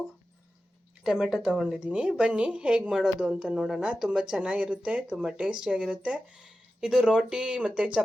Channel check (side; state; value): both; normal; correlation 0.93